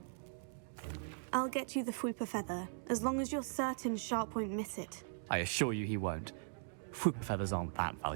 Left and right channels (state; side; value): silent; left; digital silence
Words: I'll get you the Fwooper feather, as long as you're certain Sharp won't miss it. I assure you he won't. Fwooper feathers aren't that